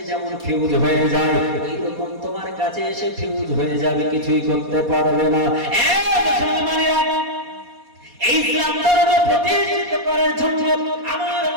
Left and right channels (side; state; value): left; late; 4.2 ms